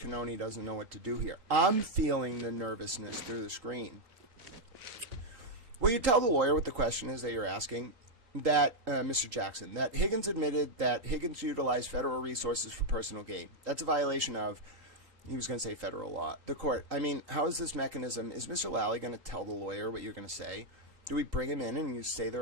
doesn't know what to do here. I'm feeling the nervousness through the screen. Will you tell the lawyer what the question is that you're asking? That, Mr. Jackson, that Higgins admitted that Higgins utilized federal resources for personal gain. That's a violation of, he was going to say federal law. The court, I mean, how is this mechanism? Is Mr. Lally going to tell the lawyer what you're going to say? Do we bring him in and you say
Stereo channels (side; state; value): left; late; 3.8 ms